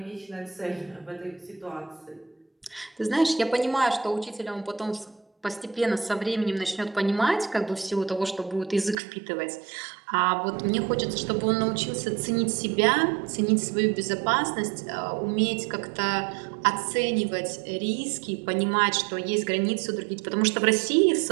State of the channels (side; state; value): left; drops out; at 9.0 s